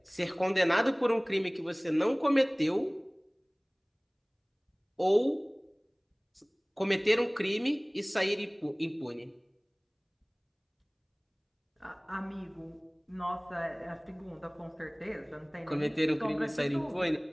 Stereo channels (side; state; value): both; identical; correlation 1.00